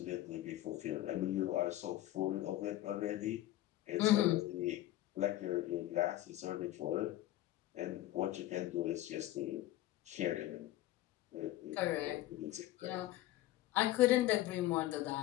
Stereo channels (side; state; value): right; quieter; 15.0 dB